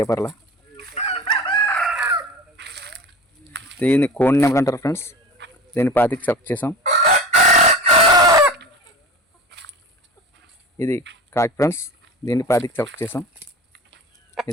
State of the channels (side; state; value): both; normal; correlation 0.33